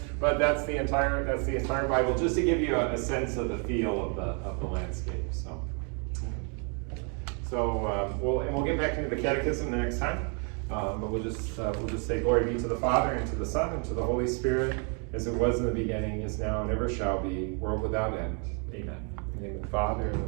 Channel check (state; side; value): quieter; left; 38.2 dB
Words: But that's the entire Bible, just to give you a sense of the feel of the landscape. So we'll get back into the catechism the next time. But we'll just say glory be to the Father and to the Son and to the Holy Spirit, as it was in the beginning, is now, and ever shall be, world without end. Amen. In the name of the Father and